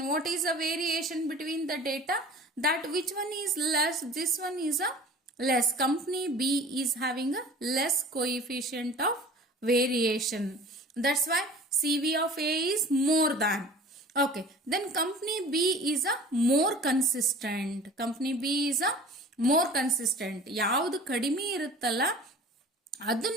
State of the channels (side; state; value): both; normal; correlation 0.43